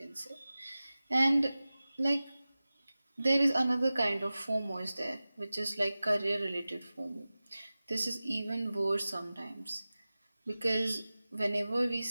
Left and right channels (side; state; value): both; inverted; correlation -0.97